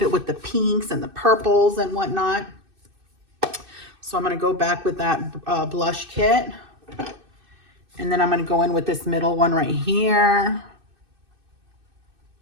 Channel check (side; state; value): left; late; 2.6 ms